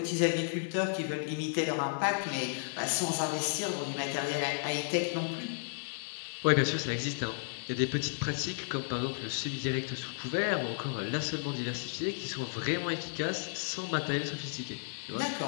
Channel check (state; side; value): silent; right; 56 dB below the other